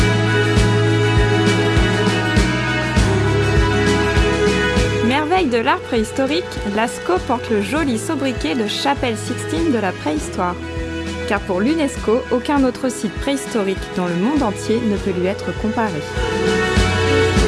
Merveille de l'art préhistorique, Lascaux porte le joli sobriquet de Chapelle Sixtine de la préhistoire. Car pour l'UNESCO, aucun autre site préhistorique dans le monde entier ne peut lui être comparé.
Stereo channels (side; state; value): both; identical; correlation 1.00